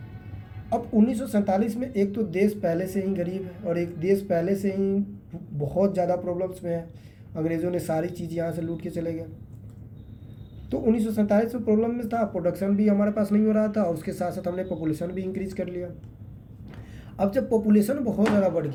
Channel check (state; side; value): identical; both; correlation 1.00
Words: अब 1947 में एक तो देश पहले से ही गरीब है, और एक देश पहले से ही बहुत ज़्यादा प्रॉब्लम्स में है। अंग्रेज़ों ने सारी चीज़ यहाँ से लूट के चले गए। तो 1947 में प्रॉब्लम में था, प्रोडक्शन भी हमारे पास नहीं हो रहा था और उसके साथ साथ हमने पॉपुलेशन भी इंक्रीज कर लिया। अब जब पॉपुलेशन बहुत ज़्यादा बढ़